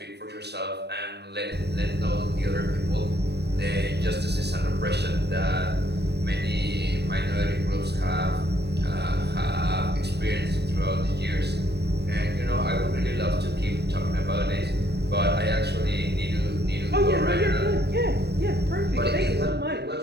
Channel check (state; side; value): late; left; 0.48 ms